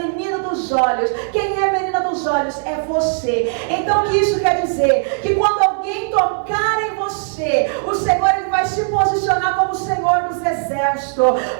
dos olhos. Quem é a menina dos olhos? É você. Então o que isso quer dizer? Que quando alguém tocar em você, o Senhor ele vai se posicionar como o Senhor dos Exércitos.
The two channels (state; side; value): silent; left; 67 dB below the other